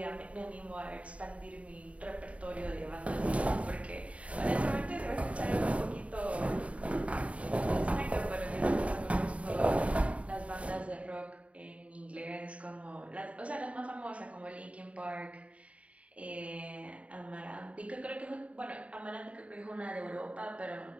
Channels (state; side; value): late; left; 0.065 ms